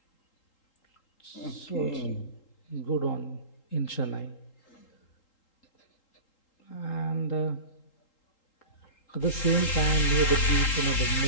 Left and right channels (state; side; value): late; right; 3.8 ms